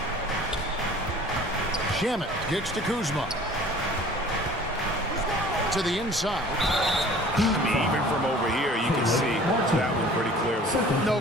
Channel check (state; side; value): normal; both; correlation 0.48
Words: Shamet kicks to Kuzma. To the inside. I mean, even from over here, you can see that one pretty clear. clearly. No